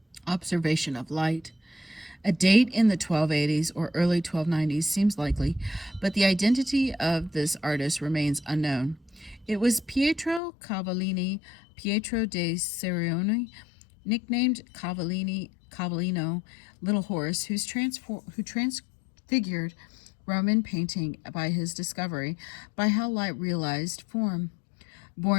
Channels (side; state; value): right; drops out; at 10.4 s